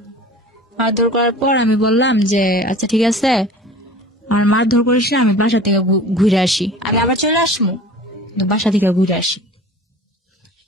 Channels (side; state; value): both; normal; correlation 0.42